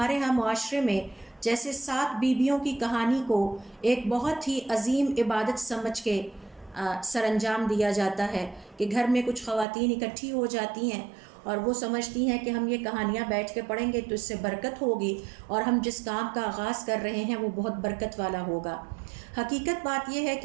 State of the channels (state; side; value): drops out; left; at 9.7 s